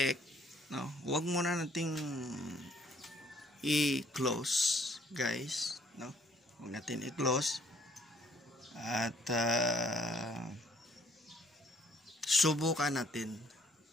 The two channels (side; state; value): both; normal; correlation 0.63